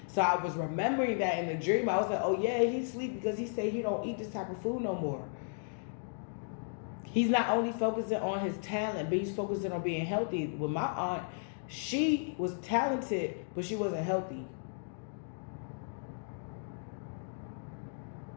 So I was remembering that in the dream. I was like, oh yeah, he sleep because he said he don't eat this type of food no more. He's not only focusing on his talent, but he's focusing on being healthy. With my aunt, she was talented, but she wasn't healthy.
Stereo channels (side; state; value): right; silent; digital silence